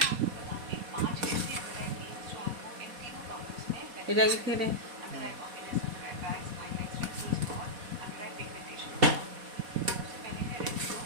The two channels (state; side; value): late; left; 4.1 ms